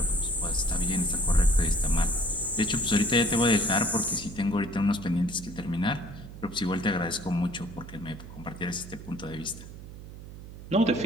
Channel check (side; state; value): right; noise; hum, 14 dB below the sound